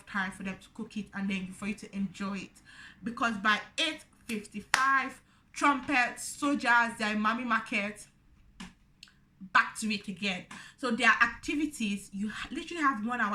time for them to cook it and then for you to enjoy it. Because by 8:55, trumpets, soldiers, they're in Mami Market, back to it again. So their activities, you literally have 1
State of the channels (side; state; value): both; identical; correlation 1.00